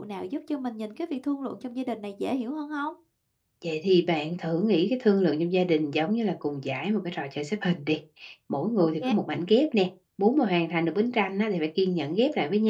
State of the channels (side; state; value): both; identical; correlation 1.00